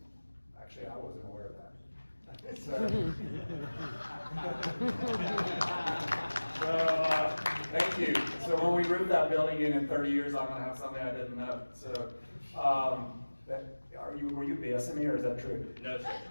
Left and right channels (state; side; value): inverted; both; correlation -1.00